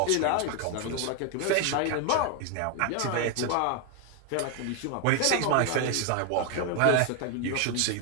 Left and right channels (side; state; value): both; different; correlation 0.01